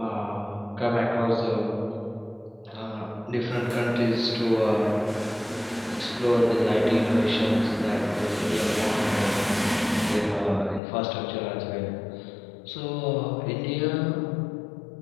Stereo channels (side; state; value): right; drops out; at 10.8 s